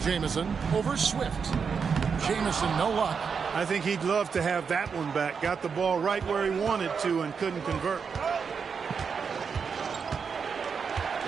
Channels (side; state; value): left; quieter; 6.0 dB